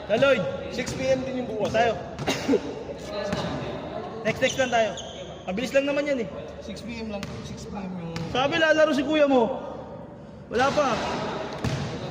Na Lloyd, 6 PM din yung bukas. Tayo. Next lang tayo. Mabilis lang naman yan eh. 6 PM lang. 6 PM yung... Sabi lalaro si kuya mo. Wala pa.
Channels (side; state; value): both; identical; correlation 1.00